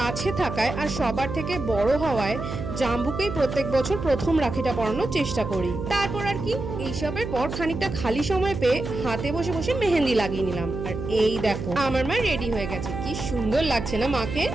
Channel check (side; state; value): right; noise; hum, 6 dB below the sound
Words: থাকায় আর সবার থেকে বড় হওয়ায় জাম্বুকেই প্রত্যেক বছর প্রথম রাখিটা পরানোর চেষ্টা করি। তারপর আর কি, এইসবের পর খানিকটা খালি সময় পেয়ে হাতে বসে বসে মেহেন্দি লাগিয়ে নিলাম। আর এই দেখো আমার মা রেডি হয়ে গেছে, কি সুন্দর লাগছে না মাকে।